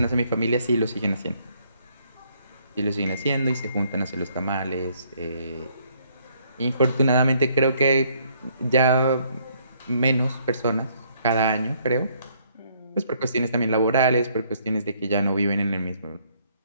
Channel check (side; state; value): both; inverted; correlation -0.67